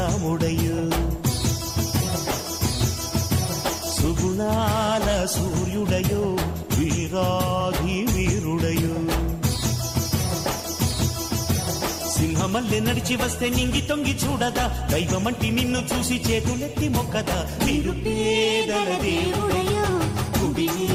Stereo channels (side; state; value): both; identical; correlation 1.00